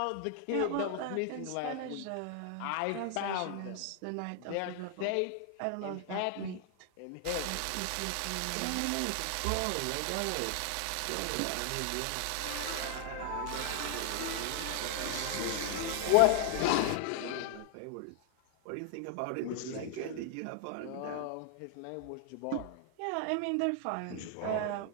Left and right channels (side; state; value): both; different; correlation 0.00